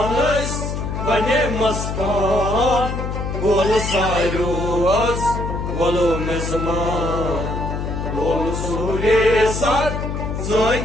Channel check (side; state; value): left; noise; hum, 4 dB below the sound